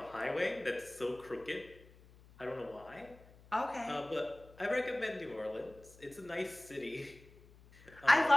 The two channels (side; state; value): left; noise; hum, 24 dB below the sound